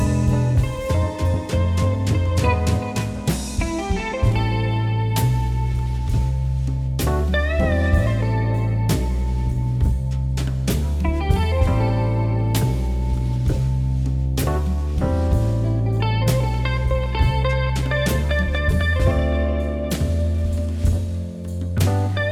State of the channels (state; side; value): identical; both; correlation 1.00